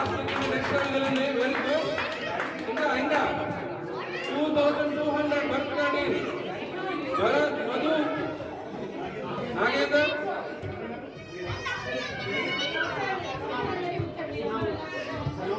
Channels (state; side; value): identical; both; correlation 1.00